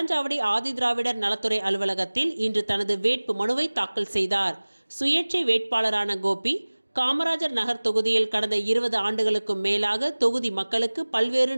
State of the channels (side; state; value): both; inverted; correlation -1.00